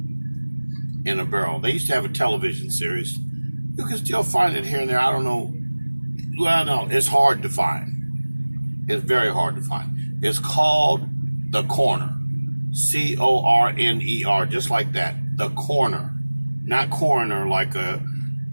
in a barrel. They used to have a television series. You can still find it here and there. I don't know. Well, no, it's hard to find. It's very hard to find. It's called The Corner. Corner, just like that. The Corner. Not coroner like a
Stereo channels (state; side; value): inverted; both; correlation -1.00